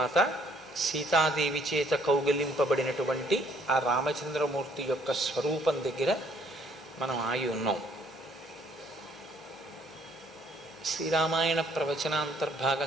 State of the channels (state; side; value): normal; both; correlation 0.64